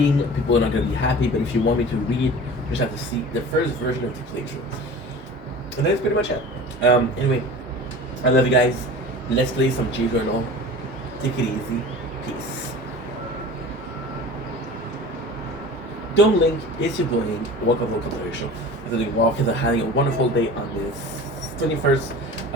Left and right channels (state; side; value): normal; both; correlation 0.38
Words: people are not gonna be happy. But if you want me to read, you just have to see the first version of the playthrough, and that's pretty much it. Anyway, I love you guys. Let's play some G Journal. Take it easy. Peace. Don't link. It's your boy. Welcome to the show. I'm doing well because I'm having a wonderful day on this 21st